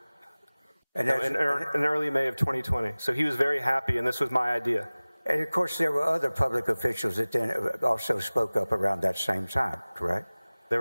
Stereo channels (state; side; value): inverted; both; correlation -0.99